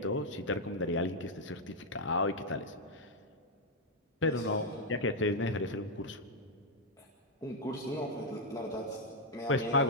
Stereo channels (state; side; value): normal; both; correlation -0.01